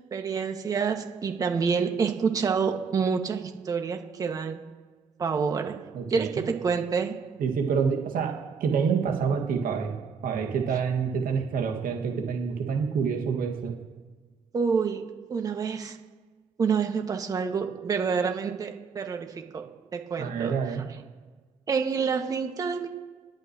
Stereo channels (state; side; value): quieter; left; 5.7 dB